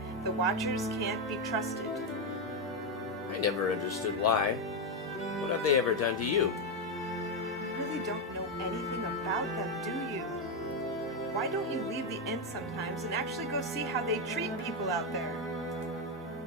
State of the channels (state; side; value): normal; both; correlation 0.06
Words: The Watchers can't be trusted. I never understood why. What have they ever done to you? You really don't know anything about them, do you? Why don't you leave the inn sometimes and actually go see how they treat people out there?